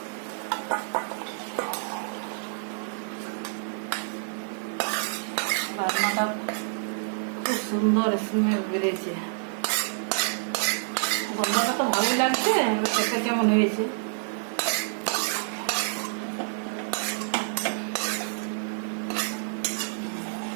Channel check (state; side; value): silent; left; digital silence